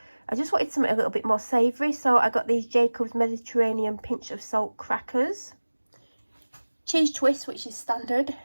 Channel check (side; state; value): both; inverted; correlation -1.00